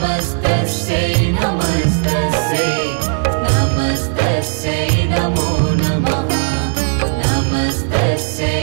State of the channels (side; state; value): left; silent; digital silence